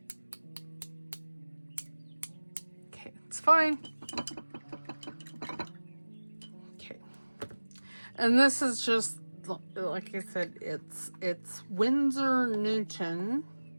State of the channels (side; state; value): both; inverted; correlation -1.00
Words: Okay, it's fine. Okay. And this is just, like I said, it's Winsor Newton